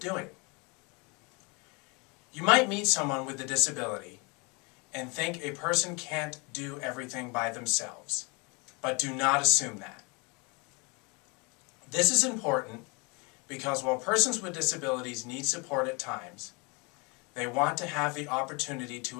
You might meet someone with a disability and think a person can't do everything by themselves, but do not assume that. This is important because while persons with disabilities need support at times, they want to have the opportunity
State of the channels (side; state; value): right; quieter; 30.3 dB